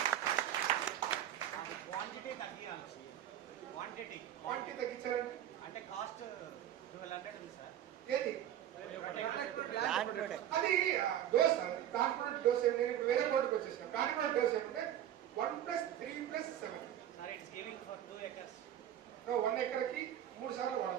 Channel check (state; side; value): quieter; left; 11.1 dB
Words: క్వాంటిటీ తగ్గించాలంటే అంటే కాస్ట్ 1200 ఉంది సార్. ఏది అది డోస్, దాని ప్రోడక్ట్ డోస్ ఏమి? నేను ఇప్పుడు వేరే ప్రోడక్ట్ వచ్చేసాను. దాని ప్రోడక్ట్ డోస్ ఏమంటే 1+3+7 sir. It's giving for 2 acres. 1 ఎకర్కి 3 సార్లు